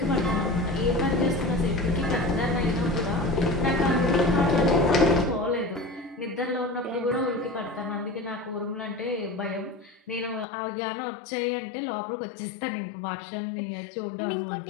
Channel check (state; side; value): drops out; right; at 10.5 s